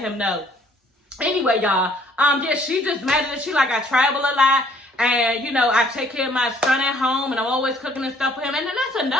know. Anyway, y'all, yeah, she just mad at it. She like, I travel a lot, and, you know, I take care of my son at home, and I'm always cooking and stuff for him. And then that's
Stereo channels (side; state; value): both; normal; correlation 0.60